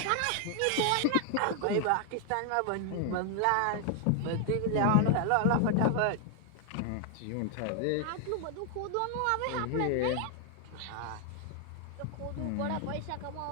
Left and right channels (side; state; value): both; different; correlation 0.00